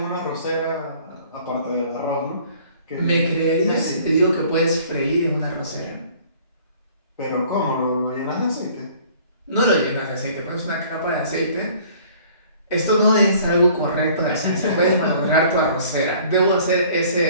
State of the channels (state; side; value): inverted; both; correlation -0.54